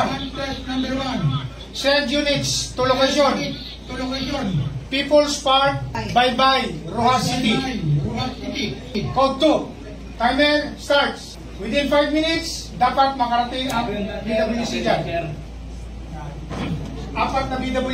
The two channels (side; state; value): both; identical; correlation 1.00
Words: test number 1. Send units to location. To location. People's Park, Bye-Bye, Rojas City. Rojas City. Code 2. Timer starts. Within 5 minutes, dapat makarating ang BWC dyan. 4 na